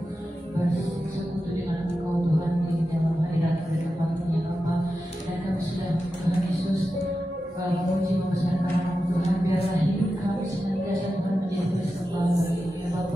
bersekutu dengan Engkau Tuhan di dalam hadirat berkembangnya Bapa. Dan kami sudah Tuhan Yesus memuji membesarkan nama-Mu Tuhan. Biarlah hidup kami senantiasa Tuhan menjadi persembahan bagi-Mu ya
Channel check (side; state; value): both; normal; correlation 0.91